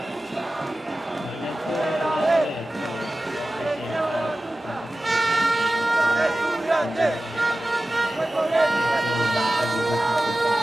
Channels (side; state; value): both; normal; correlation 0.96